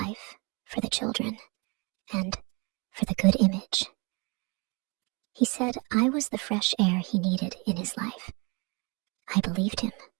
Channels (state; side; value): quieter; left; 30.0 dB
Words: for the children and for the good image. He said I was the fresh air he needed in his life. I believed him.